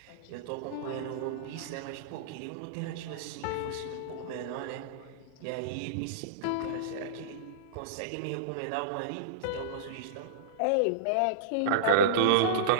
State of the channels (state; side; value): different; both; correlation -0.03